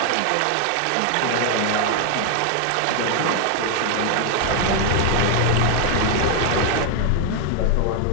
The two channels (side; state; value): both; different; correlation 0.01